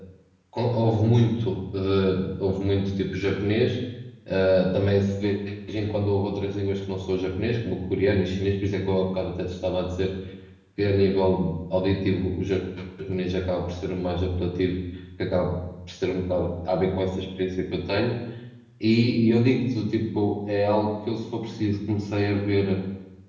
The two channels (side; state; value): both; identical; correlation 1.00